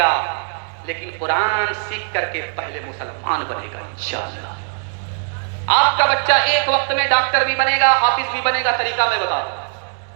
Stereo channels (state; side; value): silent; left; 66 dB below the other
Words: لیکن قرآن سیکھ کر کے پہلے مسلمان بنے گا انشاءاللہ۔ آپ کا بچہ ایک وقت میں ڈاکٹر بھی بنے گا، حافظ بھی بنے گا، طریقہ میں بتا دوں۔